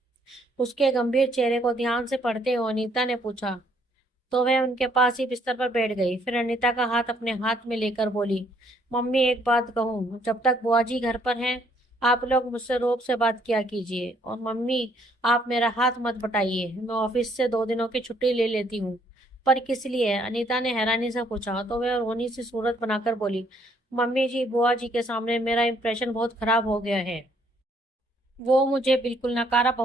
उसके गंभीर चेहरे को ध्यान से पढ़ते हुए अनीता ने पूछा। तो वह उनके पास ही बिस्तर पर बैठ गई। फिर अनीता का हाथ अपने हाथ में लेकर बोली, मम्मी एक बात कहूँ, जब तक बुआ जी घर पर हैं आप लोग मुझसे रोक से बात किया कीजिए। और मम्मी, आप मेरा हाथ मत बटाइए, मैं ऑफिस से 2 दिनों की छुट्टी ले लेती हूँ। पर किस लिए? अनीता ने हैरानी से पूछा तो वह रोनी सी सूरत बनाकर बोली, मम्मी जी, बुआ जी के सामने मेरा इंप्रेशन बहुत खराब हो गया है। वो मुझे बिल्कुल नकारा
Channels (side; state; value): both; normal; correlation 0.66